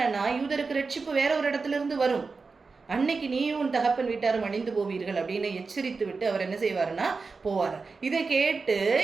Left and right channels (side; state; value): left; quieter; 4.4 dB